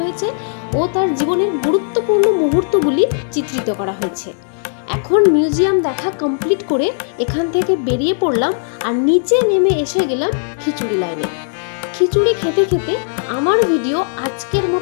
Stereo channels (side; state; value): right; silent; digital silence